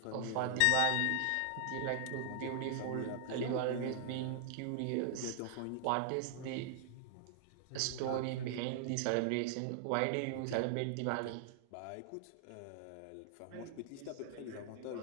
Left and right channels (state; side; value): different; both; correlation -0.01